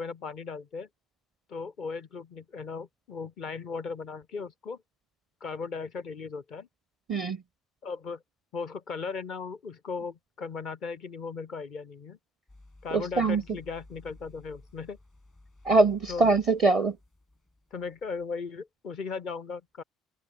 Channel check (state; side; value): normal; both; correlation 0.61